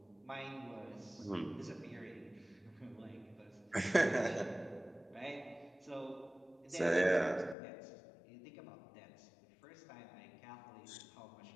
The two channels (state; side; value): drops out; right; at 7.6 s